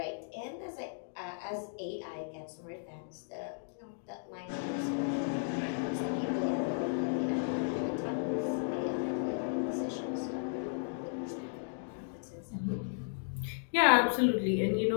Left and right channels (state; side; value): silent; right; digital silence